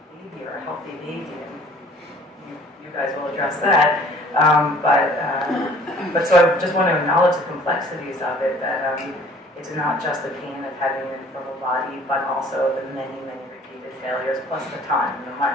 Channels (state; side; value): normal; both; correlation 0.53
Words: baby or a healthy baby. And you guys will address that. But so I just want to acknowledge the complexities of it, that it's not just the pain of having an infertile body, but also the many repeated failures, plus the time, the